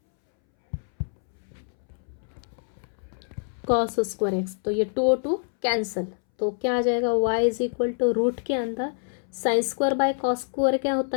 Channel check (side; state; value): right; silent; 61 dB below the other